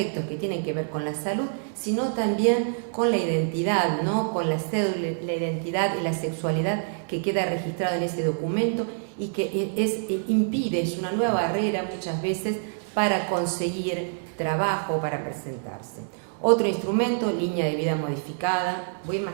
que tienen que ver con la salud, sino también con la identidad, ¿no?, con la cédula, la identidad y la sexualidad que queda registrado en ese documento, y que es una nueva barrera muchas veces para conseguir trabajo, para presentarse. Otro instrumento, línea de vida modificada. Voy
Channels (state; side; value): silent; left; digital silence